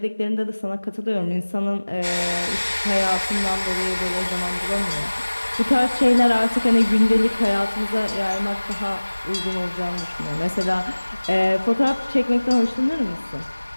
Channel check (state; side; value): inverted; both; correlation -1.00